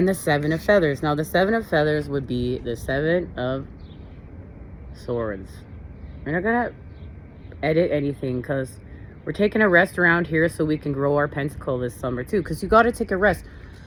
the 7 of feathers. Now, the 7 of feathers would be the 7 of swords. We're not gonna edit anything because we're taking a rest around here so we can grow our pentacle this summer too. Because you got to take a rest.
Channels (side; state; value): both; identical; correlation 1.00